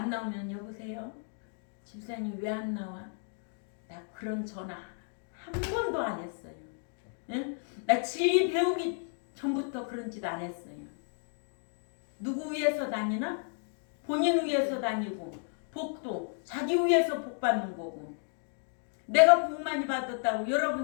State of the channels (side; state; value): right; silent; 56 dB below the other